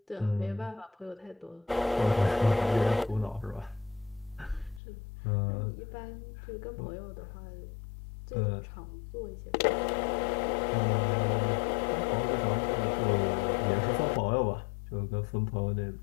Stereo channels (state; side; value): drops out; right; at 4.8 s